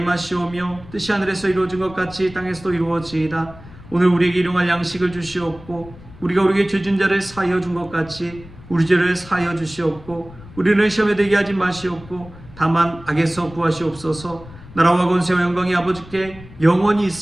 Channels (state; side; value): noise; left; rumble, 19 dB below the sound